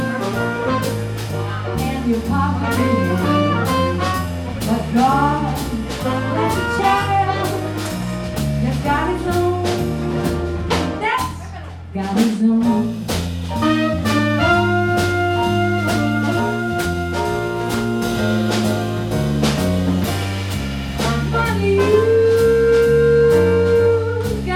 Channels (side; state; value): both; identical; correlation 1.00